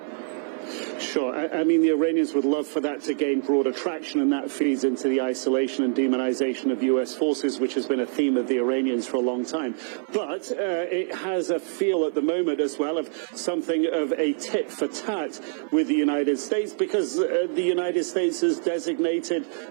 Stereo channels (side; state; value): left; silent; digital silence